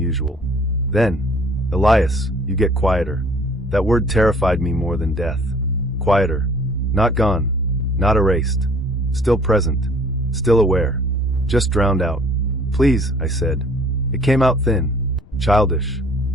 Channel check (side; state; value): left; noise; rumble, 24 dB below the sound